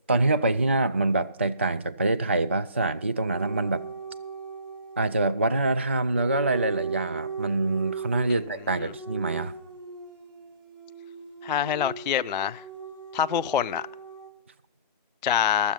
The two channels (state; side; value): inverted; both; correlation -0.52